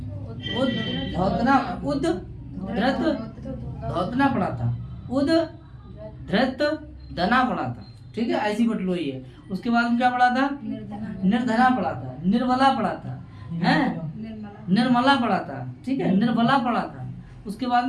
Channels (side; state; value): both; identical; correlation 1.00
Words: उद धृत धौतना पढ़ा था। उद धृत निर्धना पढ़ा था, ठीक है, ऐसी बटलोई है। उसके बाद में क्या पढ़ा था? निर्धना पढ़ा था, निर्बला पढ़ा था, हैं, निर्मला पढ़ा था, ठीक है, निर्बला पढ़ा था। उसके बाद